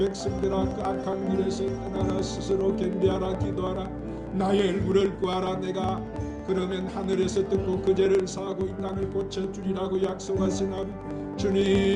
그 악한 길에서 떠나라 스스로 겸비하라 기도하라 나의 얼굴을 구하라 내가 그러면 하늘에서 듣고 그 죄를 사하고 이 땅을 고쳐주리라고 약속하신 아버지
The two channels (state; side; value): identical; both; correlation 1.00